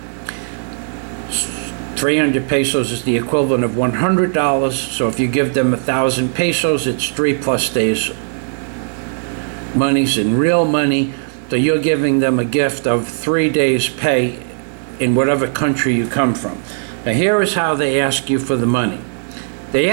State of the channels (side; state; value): left; silent; 68 dB below the other